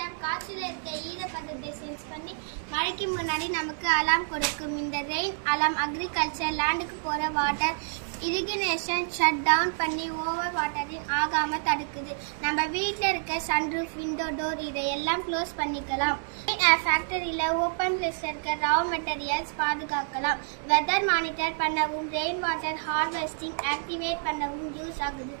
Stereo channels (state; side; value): silent; left; digital silence